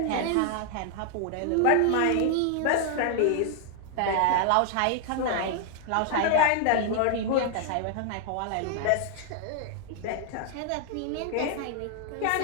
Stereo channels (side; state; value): both; different; correlation 0.00